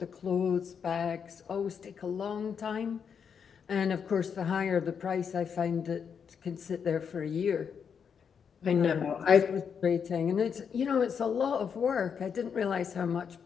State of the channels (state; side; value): quieter; right; 6.9 dB